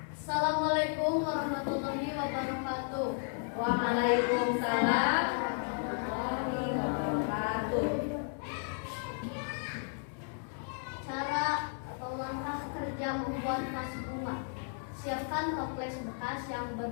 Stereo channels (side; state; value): right; silent; 55 dB below the other